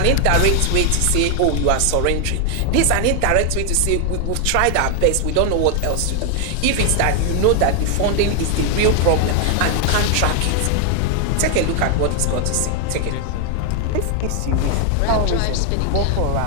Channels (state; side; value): different; both; correlation 0.00